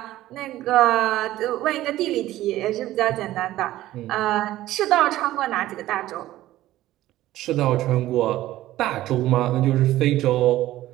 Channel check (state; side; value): quieter; left; 15.1 dB